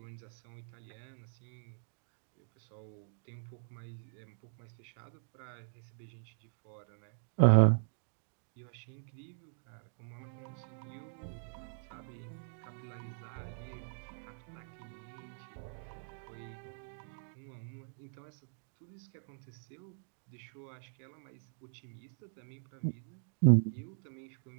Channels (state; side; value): silent; left; digital silence